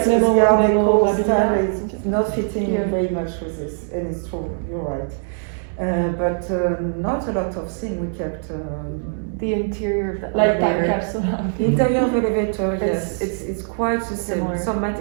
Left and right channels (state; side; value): silent; left; digital silence